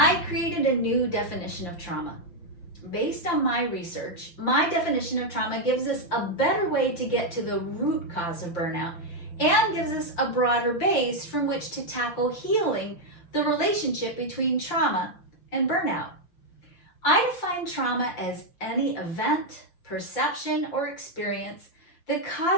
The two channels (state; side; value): late; right; 5.8 ms